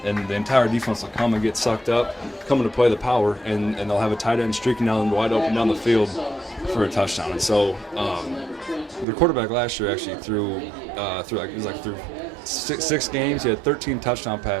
and the entire defense will come and get sucked up, coming to play the power, and they'll have a tight end streaking down wide open down the field for a touchdown. And so the quarterback last year actually threw 6 games. He had 13 touchdown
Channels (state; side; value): drops out; left; at 9.1 s